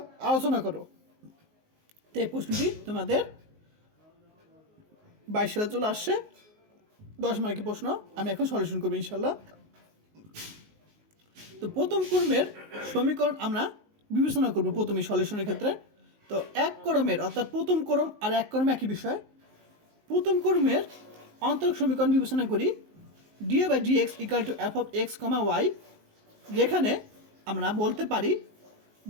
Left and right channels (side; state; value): left; late; 19 ms